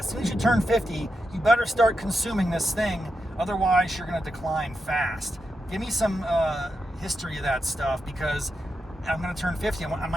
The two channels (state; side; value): normal; both; correlation 0.87